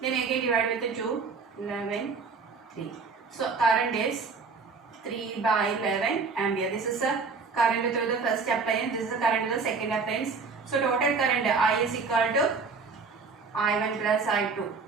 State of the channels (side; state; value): left; quieter; 4.7 dB